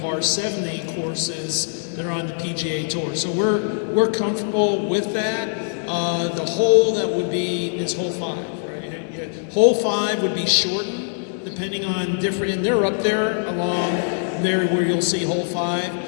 70 courses that are on the PGA Tour. So we're comfortable with that. The hole that would be is hole 5, right? Hole 5 would be shortened depending on different, and they're up there along there where you'll see hole 5.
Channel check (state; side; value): silent; right; 64 dB below the other